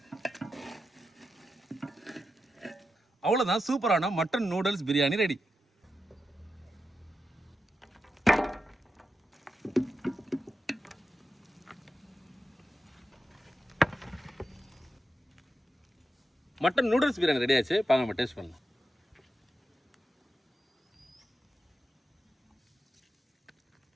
அவ்வளோதான், சூப்பரான mutton noodles biryani ready. Mutton noodles biryani ready ஆச்சு. பாங்க நம்ம டேஸ்ட் பண்ணலாம்.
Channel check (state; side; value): normal; both; correlation 0.89